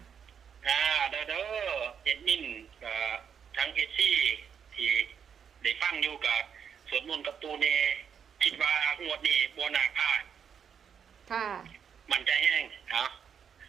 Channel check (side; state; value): left; quieter; 7.5 dB